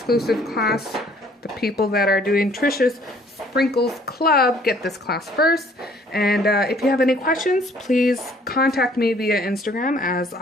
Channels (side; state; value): both; normal; correlation 0.59